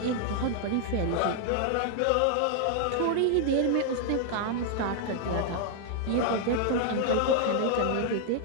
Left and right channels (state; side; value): different; both; correlation 0.00